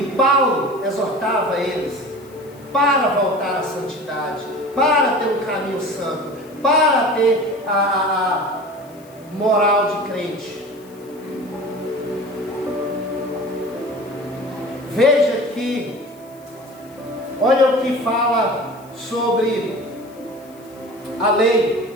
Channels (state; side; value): noise; left; hiss, 27 dB below the sound